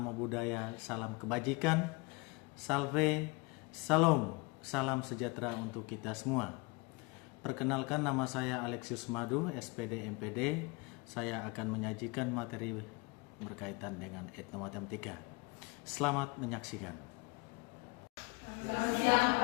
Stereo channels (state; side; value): quieter; right; 27.9 dB